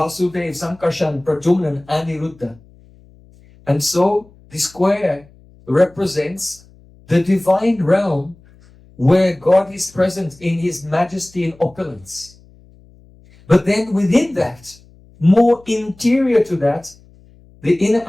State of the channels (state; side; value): noise; left; hum, 27 dB below the sound